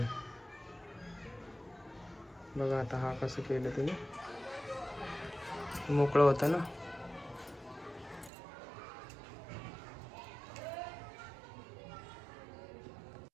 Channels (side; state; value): left; drops out; at 8.3 s